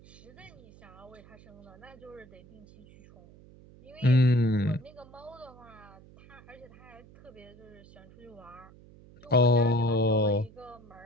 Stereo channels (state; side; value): noise; right; hum, 22 dB below the sound